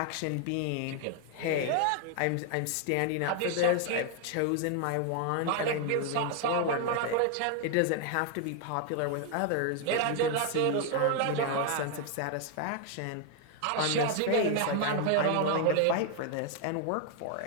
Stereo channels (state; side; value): different; both; correlation 0.00